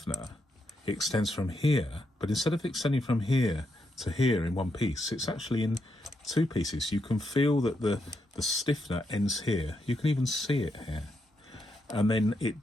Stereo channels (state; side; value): normal; both; correlation 0.81